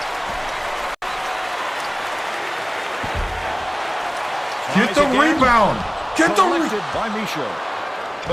Get the rebound. Get the rebound. By Michaud.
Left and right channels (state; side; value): identical; both; correlation 1.00